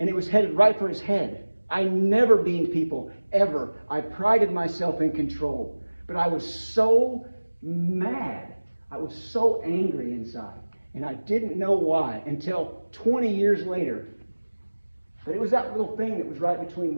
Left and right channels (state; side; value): inverted; both; correlation -1.00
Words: it was headed right for his head. I never beamed people, ever. I prided myself in control. But I was so mad. I was so angry inside, and I didn't know why until 20 years later. But it was that little thing that was right between